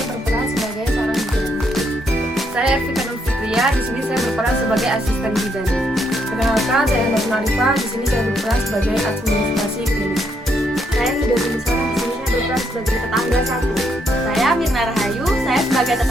berperan sebagai seorang bidan. Saya Ervika Nur Fitria, di sini saya berperan sebagai asisten bidan. Perkenalkan, saya Hendak Arifah, di sini saya berperan sebagai administrasi klinik. Saya Hidatul Isra, di sini saya berperan sebagai tetangga satu. Saya Mirna Rahayu, saya sebagai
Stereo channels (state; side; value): normal; both; correlation 0.75